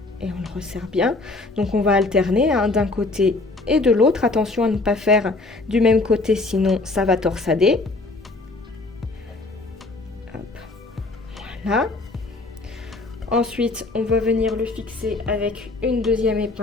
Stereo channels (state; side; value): quieter; right; 3.2 dB